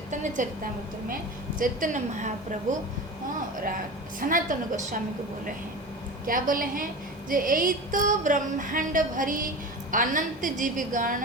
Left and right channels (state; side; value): normal; both; correlation 0.30